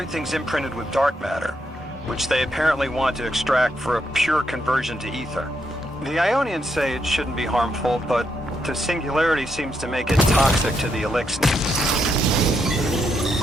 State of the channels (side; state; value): both; normal; correlation 0.79